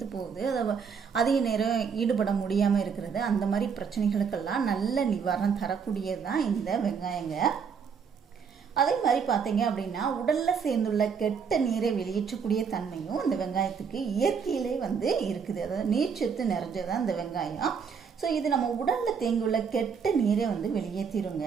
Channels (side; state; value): left; quieter; 6.3 dB